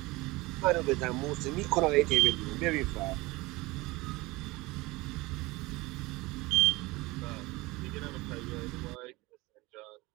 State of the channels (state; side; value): quieter; left; 22.0 dB